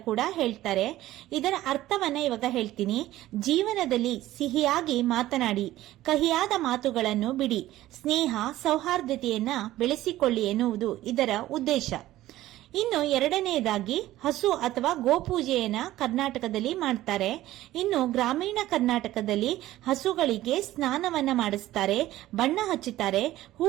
ಕೂಡ ಹೇಳ್ತಾರೆ. ಇದರ ಅರ್ಥವನ್ನ ಇವಾಗ ಹೇಳ್ತೀನಿ. ಜೀವನದಲ್ಲಿ ಸಿಹಿಯಾಗಿ ಮಾತನಾಡಿ, ಕಹಿಯಾದ ಮಾತುಗಳನ್ನು ಬಿಡಿ, ಸ್ನೇಹ ಸೌಹಾರ್ದತೆಯನ್ನ ಬೆಳೆಸಿಕೊಳ್ಳಿ ಎನ್ನುವುದು ಇದರ ಉದ್ದೇಶ. ಇನ್ನು ಎರಡನೆಯದಾಗಿ ಹಸು ಅಥವಾ ಗೋಪೂಜೆಯನ್ನ ಕರ್ನಾಟಕದಲ್ಲಿ ಮಾಡ್ತಾರೆ. ಇನ್ನು ಗ್ರಾಮೀಣ ಕರ್ನಾಟಕದಲ್ಲಿ ಹಸುಗಳಿಗೆ ಸ್ನಾನವನ್ನ ಮಾಡಿಸ್ತಾರೆ, ಬಣ್ಣ ಹಚ್ಚುತ್ತಾರೆ,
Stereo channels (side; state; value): left; quieter; 15.2 dB